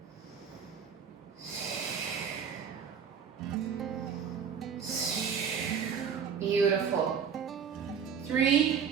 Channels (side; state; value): left; quieter; 7.1 dB